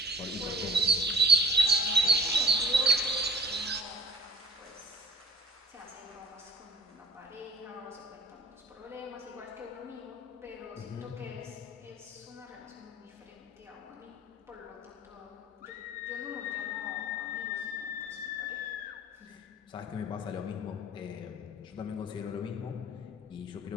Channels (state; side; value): normal; both; correlation 0.48